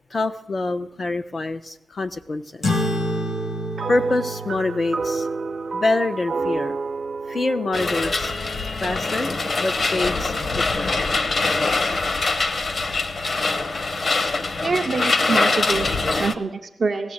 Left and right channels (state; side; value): normal; both; correlation 0.89